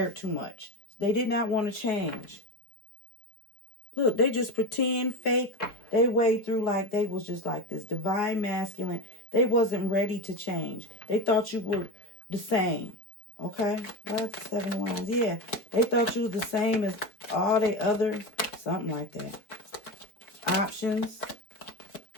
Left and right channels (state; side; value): late; right; 4.8 ms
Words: too much. They did not want to change. Look, they just pretend, fake. They way through like they was just like this divine masculine. They wasn't ready to change. They thought you were the same. Okay? What's the 7 of Wands? Yeah. They thought you were the same as all the other, something like that. Options.